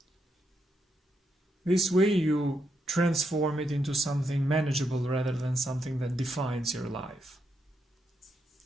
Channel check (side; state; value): both; normal; correlation 0.81